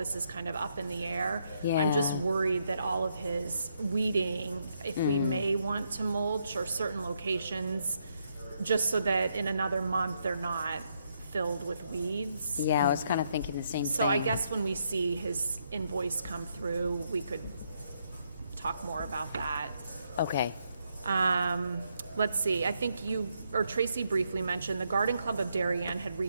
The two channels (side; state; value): both; inverted; correlation -0.77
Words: is kind of up in the air. I'm just Yeah. worried that all of his weeding, if we may want to mulch or certain locations, just so that in another month they're not filled with weeds. Yeah, I was kind of thinking the same thing. So I guess when we see his invoice come through, we could talk more about that. Okay. Let's see, I think you, or Tracy briefly mentioned, the Garden Club of Darien had